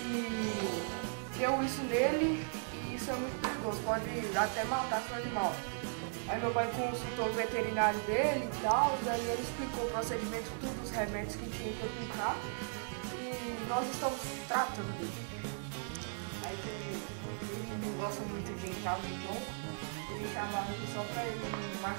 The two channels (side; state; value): left; silent; digital silence